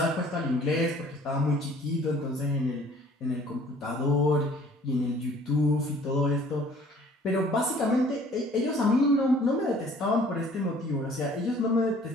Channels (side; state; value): both; normal; correlation 0.54